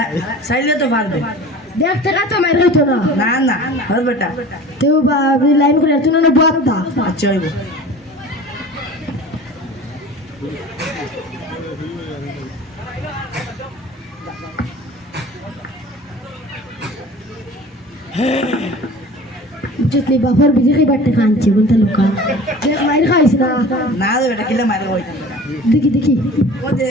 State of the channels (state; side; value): normal; both; correlation 0.40